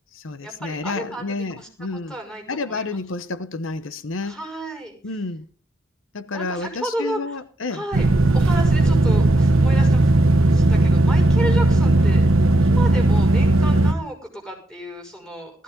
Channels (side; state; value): both; normal; correlation 0.81